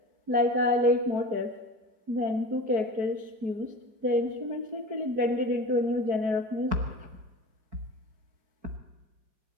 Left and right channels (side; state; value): left; late; 4.7 ms